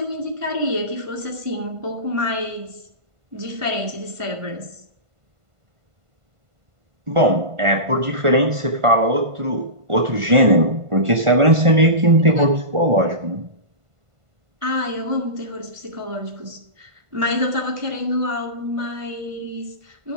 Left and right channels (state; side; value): late; left; 1.5 ms